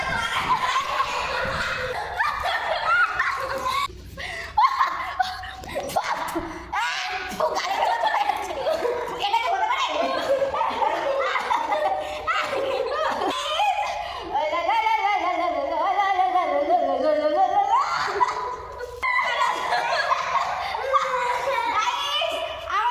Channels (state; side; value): identical; both; correlation 1.00